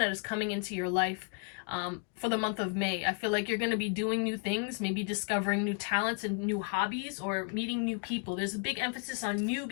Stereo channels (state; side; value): quieter; right; 38.7 dB